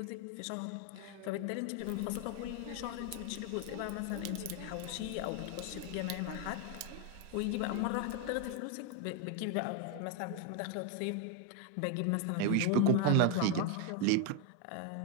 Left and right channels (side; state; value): both; different; correlation 0.01